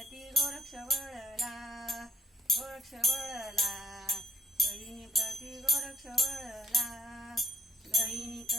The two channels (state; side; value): normal; both; correlation 0.69